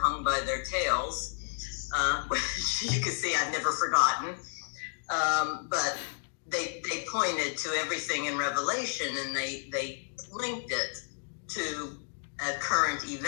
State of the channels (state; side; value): silent; right; digital silence